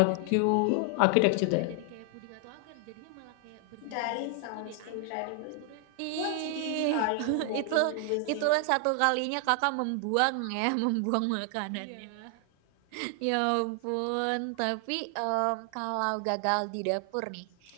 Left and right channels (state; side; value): different; both; correlation 0.00